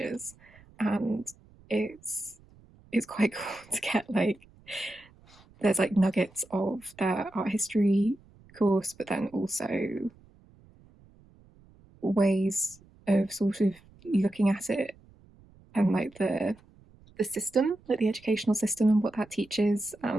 and it's quite cool to get like there's like nuggets of their art history course, but then also ways of sort of looking at it and like the system, like the educational system and what that teaches,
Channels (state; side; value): noise; right; rumble, 27 dB below the sound